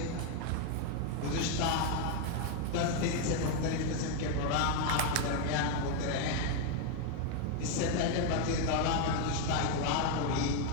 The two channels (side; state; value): both; different; correlation 0.01